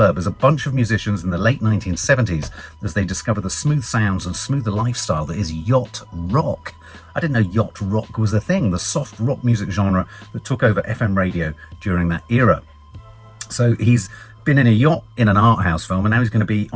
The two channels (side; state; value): both; identical; correlation 1.00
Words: as a bunch of musicians in the late 1970s as they discover the smooth sounds and smoother lifestyle that is yacht rock. I didn't know yacht rock was a thing, the soft rock music genre that took over FM radio during that era. So he's been in a yacht in an art house film, and now he's going to be